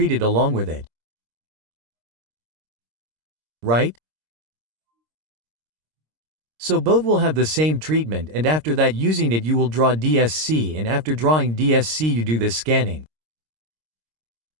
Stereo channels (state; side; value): late; left; 26 ms